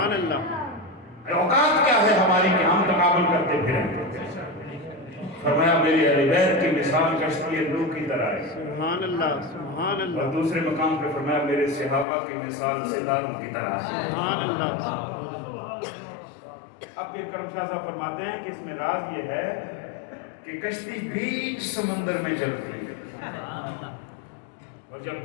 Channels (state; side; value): drops out; right; at 12.1 s